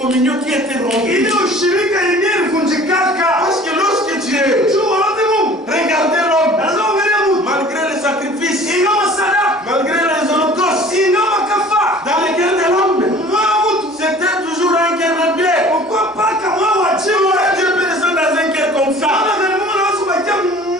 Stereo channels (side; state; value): both; normal; correlation 0.47